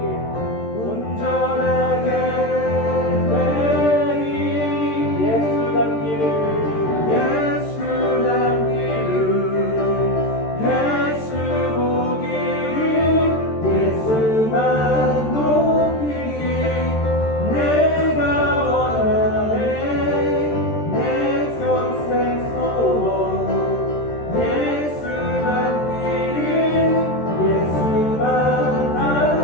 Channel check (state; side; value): late; right; 13 ms